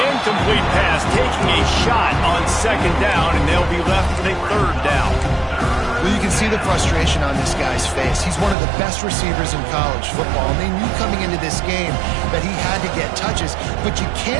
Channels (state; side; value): drops out; left; at 8.6 s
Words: incomplete pass taking a shot on second down, and they'll be left with a third down. Well, you can see the frustration on this guy's face. He's one of the best receivers in college football, and they knew coming into this game that he had to get touches, but you